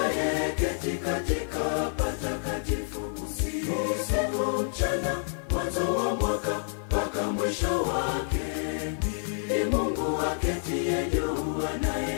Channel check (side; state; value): right; silent; 59 dB below the other